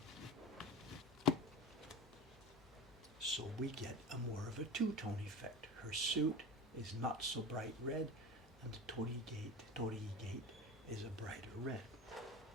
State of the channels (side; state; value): both; normal; correlation 0.31